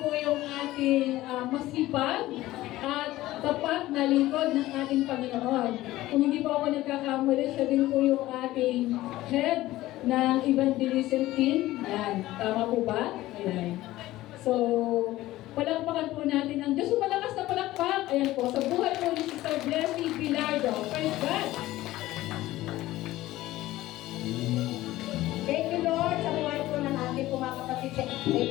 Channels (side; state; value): right; quieter; 16.4 dB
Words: po yung ating masipag at tapat na lingkod ng ating Panginoon. Kung hindi po ako nagkakamali, siya din po yung ating head ng evangelism team. Yan. Tama po ba? Ayan. So, palakpakan po natin ang Diyos. Malakas na palakpak. Ayan po. Sa buhay po ni Sister Blessing Bilardo. Praise God! Thank you, Lord, sa buhay po ng ating mga kapatid. Thank